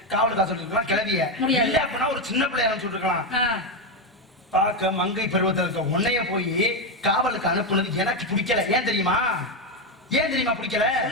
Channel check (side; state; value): both; normal; correlation 0.08